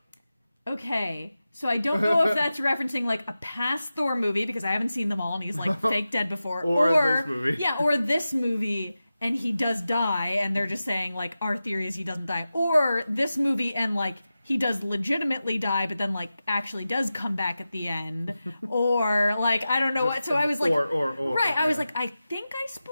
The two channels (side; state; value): both; inverted; correlation -0.94